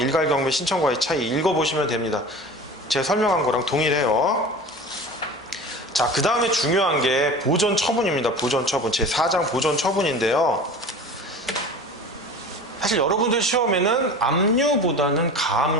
경매 신청과의 차이 읽어보시면 됩니다. 제가 설명한 거랑 동일해요. 자, 그 다음에 중요한 게 보존 처분입니다. 보존 처분. 제 4장 보존 처분인데요. 사실 여러분들 시험에는 압류보다는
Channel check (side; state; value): both; normal; correlation 0.37